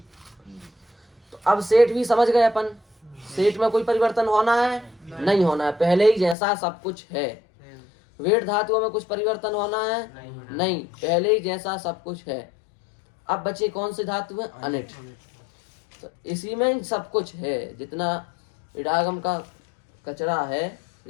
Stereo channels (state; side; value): drops out; right; at 6.4 s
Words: तो अब सेठ भी समझ गए अपन। सेठ में कोई परिवर्तन होना है? नहीं होना है, पहले ही जैसा सब कुछ है। वेट धातुओं में कुछ परिवर्तन होना है? नहीं, पहले ही जैसा सब कुछ है। अब बचे कौन से धातु है? अनिट। तो इसी में सब कुछ है। जितना इडागम का कचरा है,